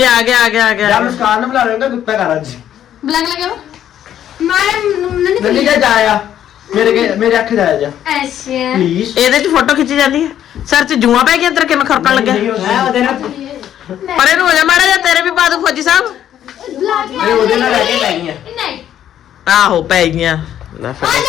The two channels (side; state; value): right; quieter; 10.7 dB